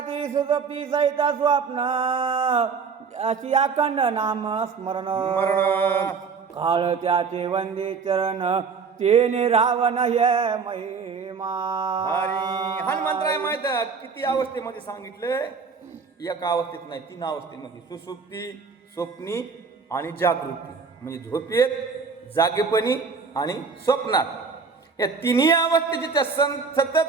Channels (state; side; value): quieter; left; 5.3 dB